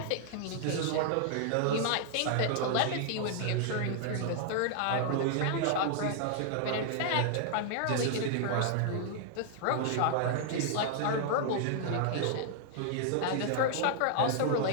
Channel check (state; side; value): different; both; correlation 0.00